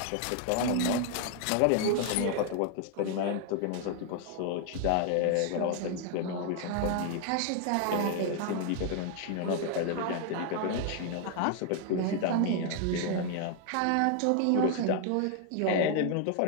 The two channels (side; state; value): both; different; correlation 0.00